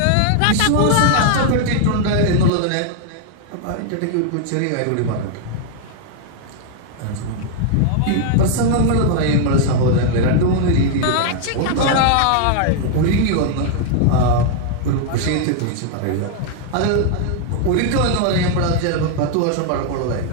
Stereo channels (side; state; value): both; different; correlation 0.00